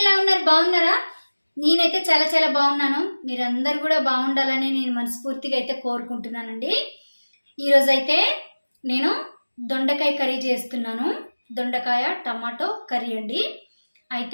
ఉన్నారు? బాగున్నారా? నేనైతే చాలా చాలా బాగున్నాను. మీరందరూ కూడా బాగుండాలని నేను మనస్ఫూర్తిగా అయితే కోరుకుంటున్నానండి. ఈరోజైతే నేను దొండకాయ కర్రీ చేస్తున్నాను. దొండకాయ టమాటో కర్రీ అండి.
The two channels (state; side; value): inverted; both; correlation -1.00